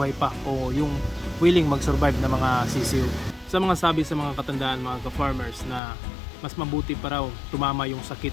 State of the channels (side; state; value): right; drops out; at 5.8 s